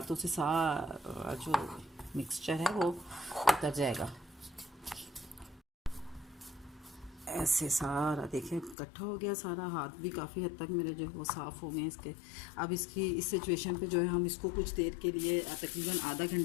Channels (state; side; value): drops out; right; at 8.8 s